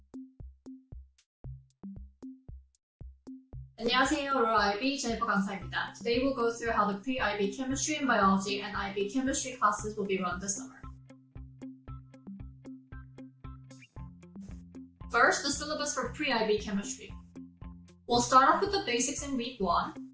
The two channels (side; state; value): both; identical; correlation 1.00